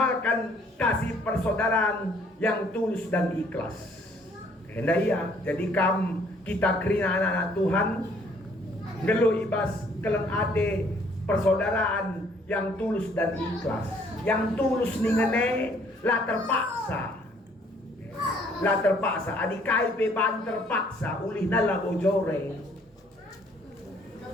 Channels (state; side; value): normal; both; correlation 0.62